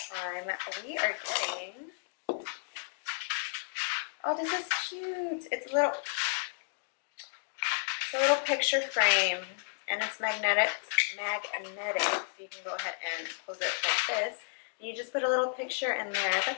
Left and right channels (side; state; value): right; silent; digital silence